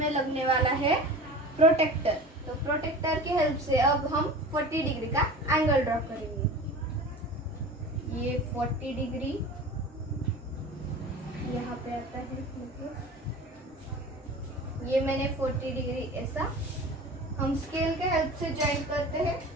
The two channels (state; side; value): normal; both; correlation 0.36